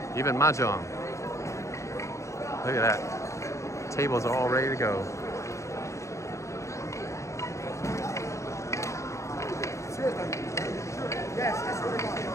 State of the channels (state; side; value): late; right; 0.15 ms